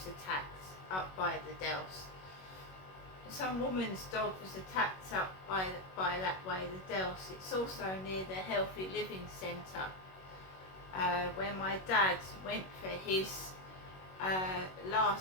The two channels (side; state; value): right; late; 21 ms